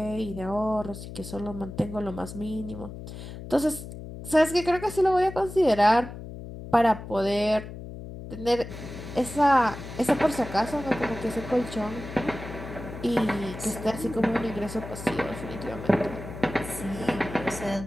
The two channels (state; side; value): noise; left; hum, 11 dB below the sound